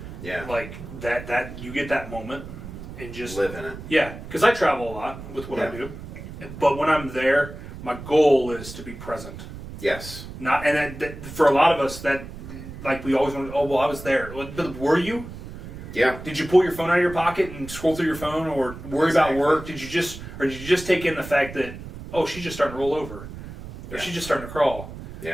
Yeah. Like that you get that moment and just live in it. Yeah, because I travel a lot with what I do, but when I'm there, my goal is to be present. Yes. Not and that, for a lot of us that like we always want. Oh well, I was there. But were you? Yeah. Did you pull your phone out of your pocket and scroll through your phone, or worry about work? Did you just take in the fact that she's just starting to roll over, or she's just starting to crawl,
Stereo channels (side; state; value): right; noise; rumble, 12 dB below the sound